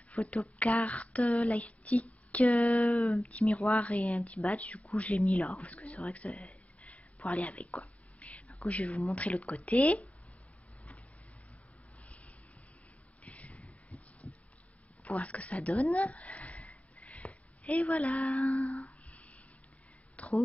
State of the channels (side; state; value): right; late; 0.068 ms